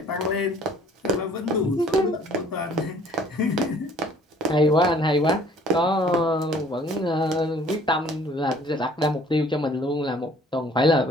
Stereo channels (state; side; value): normal; both; correlation 0.55